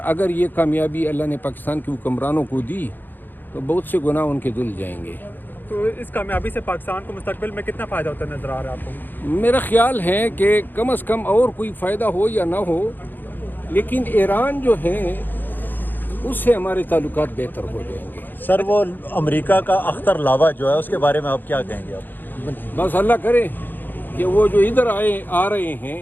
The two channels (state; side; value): late; right; 0.090 ms